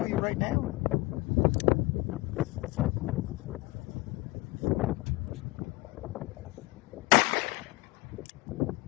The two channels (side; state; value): right; quieter; 22.5 dB